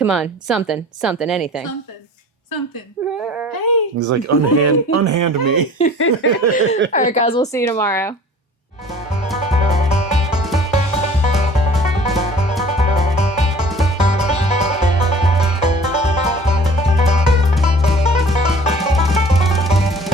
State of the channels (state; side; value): normal; both; correlation 0.47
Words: on, something, anything. Something. Hey. He's like, unhand me. All right, guys, we'll see you tomorrow.